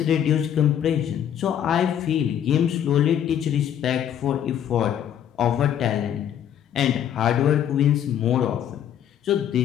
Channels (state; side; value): quieter; right; 9.8 dB